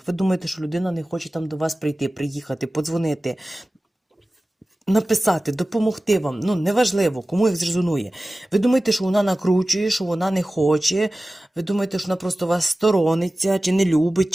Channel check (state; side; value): normal; both; correlation 0.96